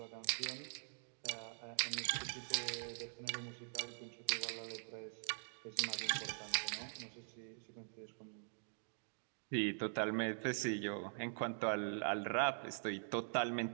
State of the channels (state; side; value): silent; left; digital silence